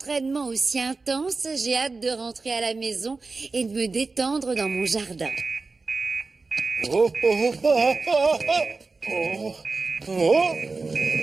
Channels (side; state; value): left; quieter; 4.0 dB